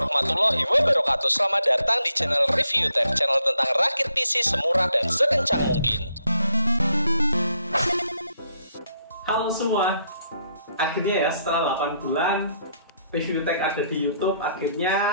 wabarakatuh. Selamat datang di channel Review Tech, channel tentang rakit PC semurah dan sekencang mungkin. Halo semua, akhirnya ya setelah 8 bulan Review Tech ada di YouTube,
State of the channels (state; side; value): inverted; both; correlation -0.73